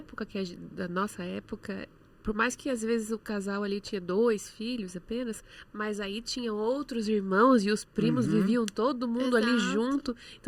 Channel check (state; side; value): identical; both; correlation 1.00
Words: da nossa época, por mais que às vezes o casal ali tinha 2 filhos apenas, mas aí tinha outros irmãos e os primos viviam todo mundo ali junto.